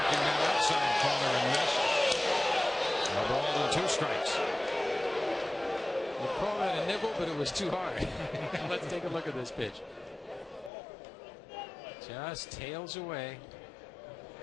that outside corner and missed. A ball and 2 strikes. You call that a nibble, but it was too hard. Let's take a look at this pitch. Just tails away.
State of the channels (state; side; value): drops out; right; at 10.7 s